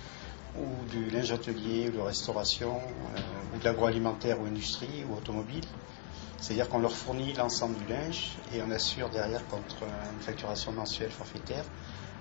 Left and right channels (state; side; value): silent; right; 53 dB below the other